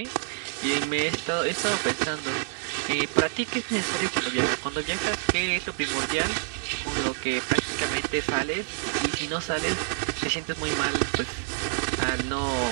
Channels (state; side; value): silent; left; 60 dB below the other